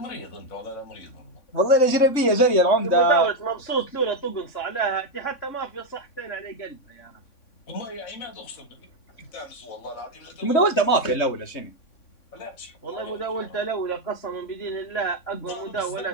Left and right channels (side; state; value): right; late; 3.6 ms